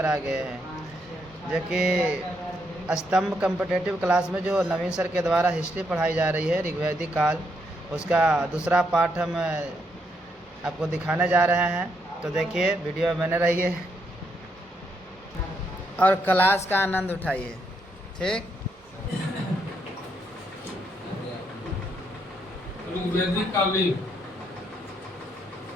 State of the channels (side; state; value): both; normal; correlation 0.77